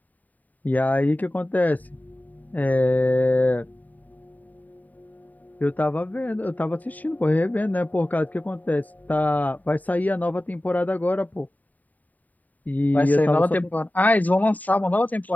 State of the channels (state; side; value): late; right; 0.078 ms